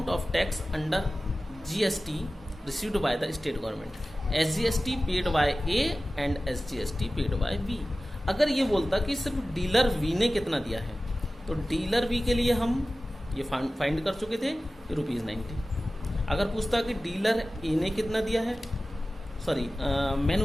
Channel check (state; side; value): normal; both; correlation 0.96